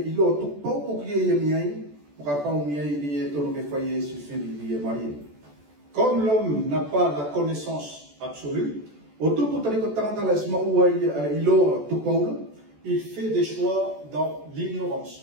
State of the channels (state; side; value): late; left; 14 ms